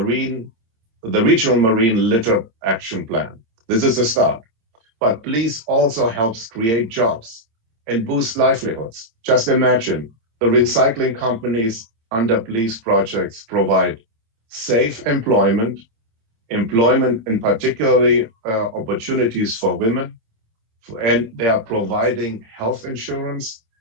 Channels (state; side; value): late; left; 26 ms